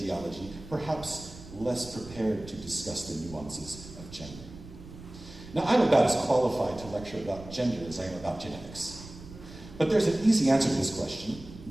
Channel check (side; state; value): right; noise; rumble, 16 dB below the sound